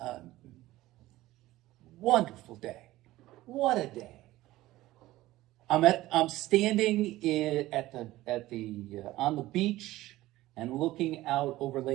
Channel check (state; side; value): quieter; left; 16.8 dB